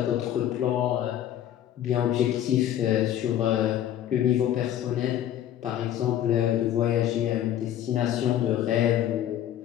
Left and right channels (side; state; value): right; quieter; 11.4 dB